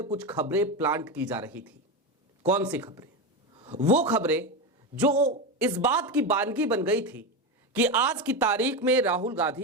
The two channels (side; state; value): both; normal; correlation 0.16